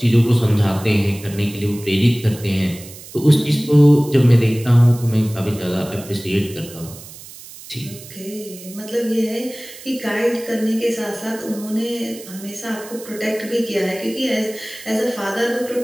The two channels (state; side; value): noise; right; hiss, 17 dB below the sound